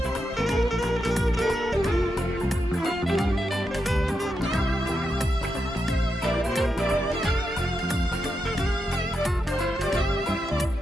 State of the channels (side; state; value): both; normal; correlation 0.86